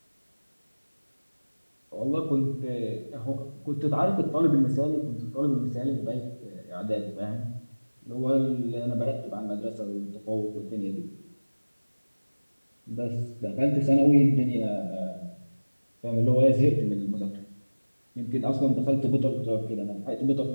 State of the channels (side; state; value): both; inverted; correlation -1.00